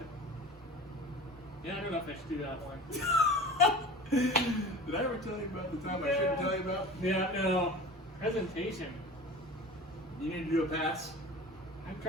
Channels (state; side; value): normal; both; correlation 0.37